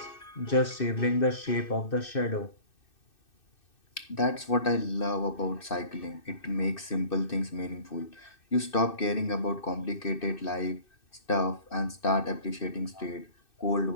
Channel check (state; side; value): late; right; 2.6 ms